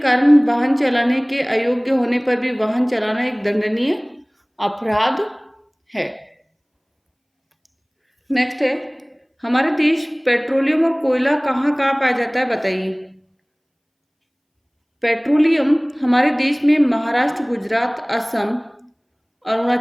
कारण वाहन चलाने के अयोग्य होने पर भी वाहन चलाना एक दंडनीय अपराध है। नेक्स्ट है, हमारे देश पेट्रोलियम और कोयला कहाँ कहाँ पाया जाता है? बताइए। पेट्रोलियम हमारे देश में महाराष्ट्र, गुजरात, असम,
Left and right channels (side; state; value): both; identical; correlation 1.00